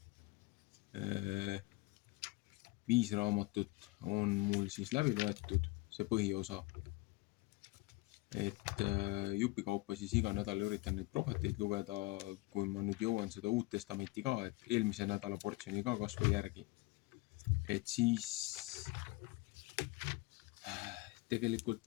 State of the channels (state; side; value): quieter; right; 22.5 dB